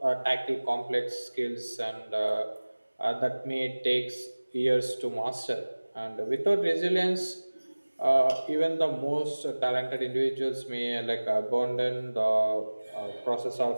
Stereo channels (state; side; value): inverted; both; correlation -1.00